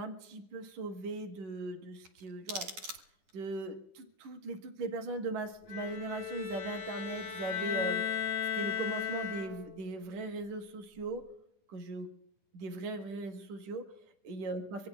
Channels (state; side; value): late; left; 10 ms